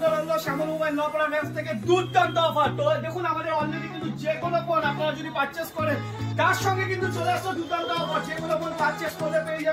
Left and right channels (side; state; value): both; identical; correlation 1.00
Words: রইলো শ্যামল মোবাইল নপাড়া ব্রাঞ্চ থেকে দুর্দান্ত অফার। তো দেখুন আমাদের অলরেডি কিন্তু যে কোনো ফোন আপনারা যদি পারচেজ করেন তার সঙ্গে কিন্তু চলে আসলো দুর্দান্ত অফার। যে কোনো ফোন পারচেজ করলে পেয়ে